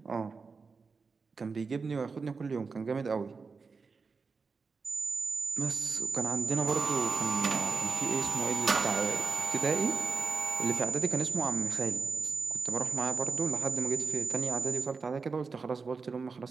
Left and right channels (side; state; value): left; quieter; 4.8 dB